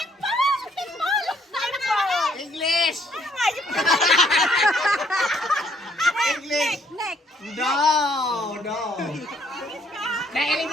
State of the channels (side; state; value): both; normal; correlation 0.66